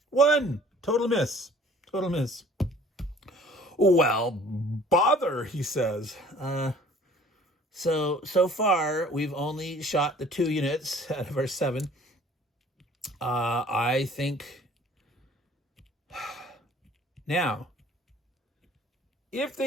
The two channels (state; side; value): normal; both; correlation 0.52